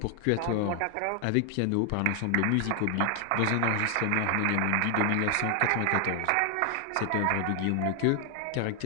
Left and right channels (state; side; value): different; both; correlation 0.00